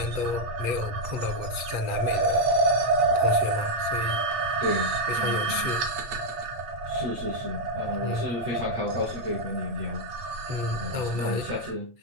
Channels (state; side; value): late; left; 8.5 ms